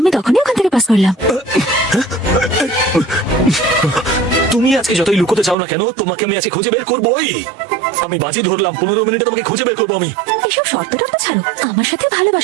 তখনই ওখান থেকে পাস করলাম। তুমি আজকে যতই লুকোতে চাও না কেন, তোমাকে আমি আজকে খুঁজে বের করবোই। আমি বাজি ধরলাম 15 মিনিটে তোমাকে খুঁজে বের করবো আমি। এসব শর্ত টর্ত ছাড়ো, আমার সাথে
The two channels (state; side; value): drops out; left; at 5.6 s